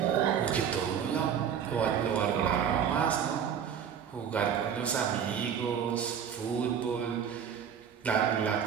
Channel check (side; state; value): left; quieter; 8.1 dB